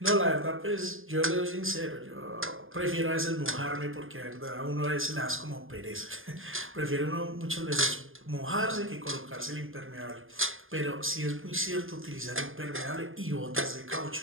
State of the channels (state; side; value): late; left; 0.59 ms